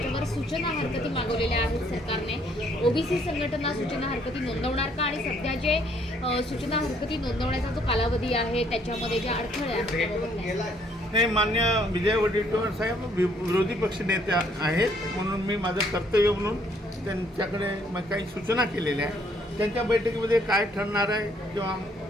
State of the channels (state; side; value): normal; both; correlation 0.66